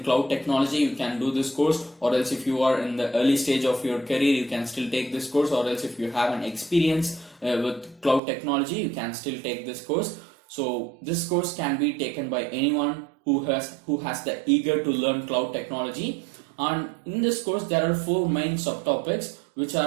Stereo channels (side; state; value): left; drops out; at 8.2 s